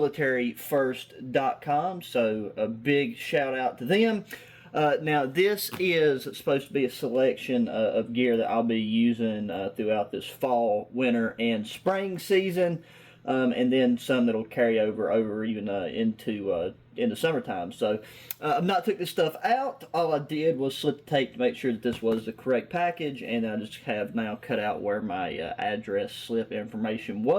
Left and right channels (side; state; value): both; identical; correlation 1.00